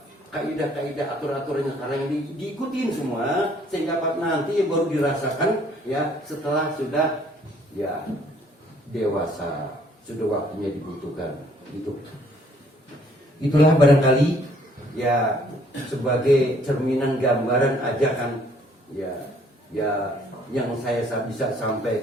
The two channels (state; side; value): normal; both; correlation 0.62